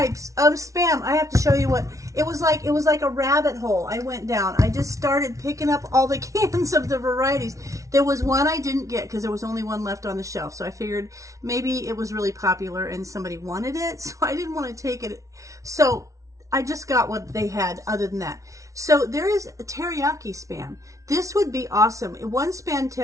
of spam. I have to show you what it was like. It was like a rabbit hole. I went down. I just started picking up all the cans of the varieties. There was one I didn't get because there was only one left on the shelf. So I figured maybe it was really popular and somebody wanted it. So I didn't want to take it. So I just got what they had other than that. So there is a teriyaki spam. This would be awesome. In one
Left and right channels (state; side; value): late; left; 0.16 ms